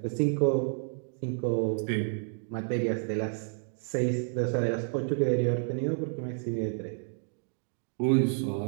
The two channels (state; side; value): silent; left; digital silence